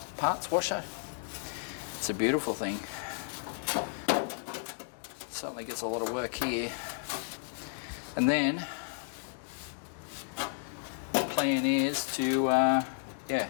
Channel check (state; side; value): silent; right; digital silence